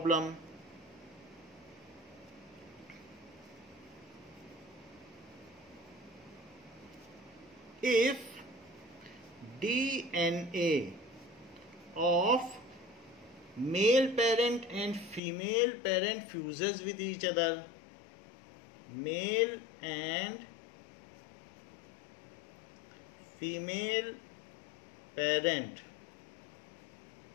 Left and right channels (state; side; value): drops out; right; at 15.2 s